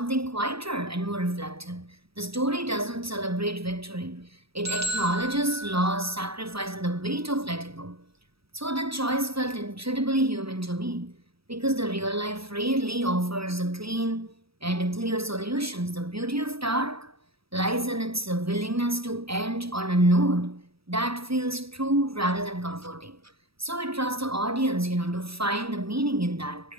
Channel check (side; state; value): left; late; 0.76 ms